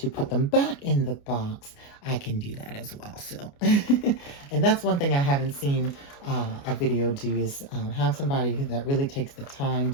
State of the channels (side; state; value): right; late; 29 ms